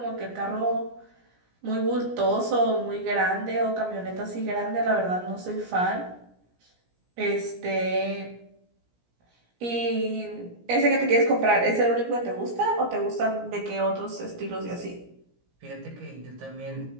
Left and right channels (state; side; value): late; left; 17 ms